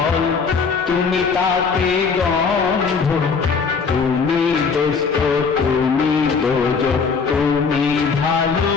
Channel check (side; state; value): right; quieter; 5.3 dB